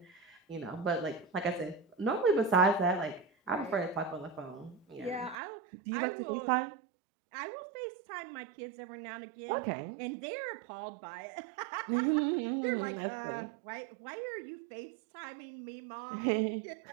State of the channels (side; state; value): left; drops out; at 5.4 s